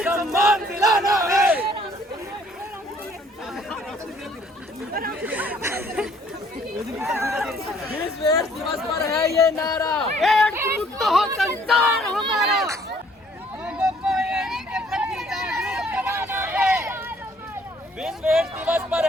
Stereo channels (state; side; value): normal; both; correlation 0.61